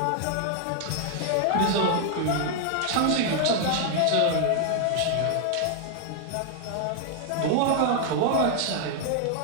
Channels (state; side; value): different; both; correlation 0.00